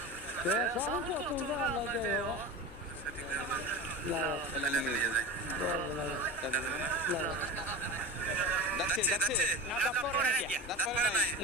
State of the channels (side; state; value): both; normal; correlation 0.27